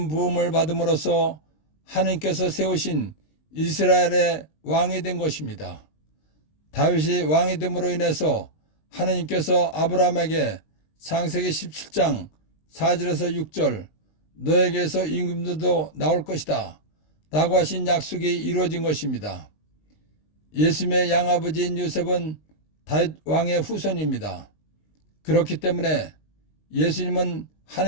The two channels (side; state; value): right; late; 19 ms